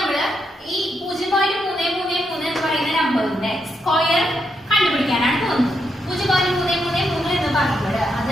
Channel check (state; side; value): normal; both; correlation 0.81